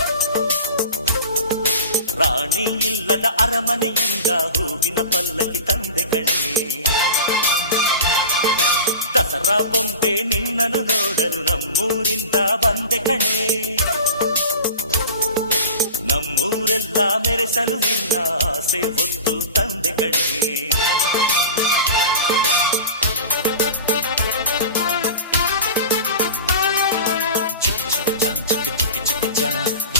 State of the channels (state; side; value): inverted; both; correlation -0.33